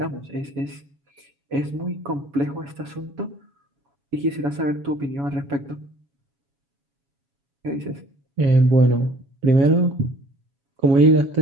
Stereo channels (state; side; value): late; left; 7.2 ms